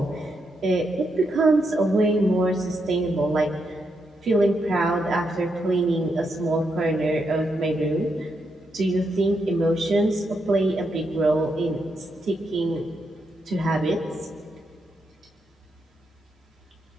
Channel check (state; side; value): normal; both; correlation 0.81